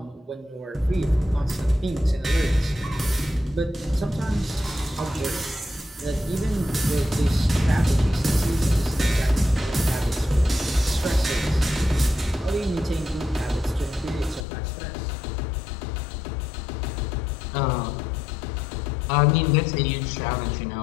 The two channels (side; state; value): right; drops out; at 14.5 s